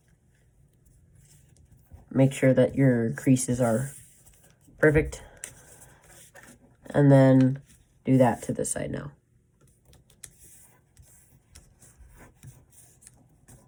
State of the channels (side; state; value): both; identical; correlation 1.00